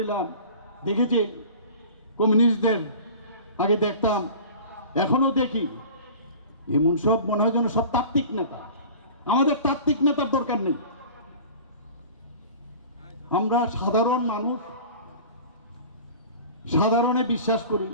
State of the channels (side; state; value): both; inverted; correlation -0.40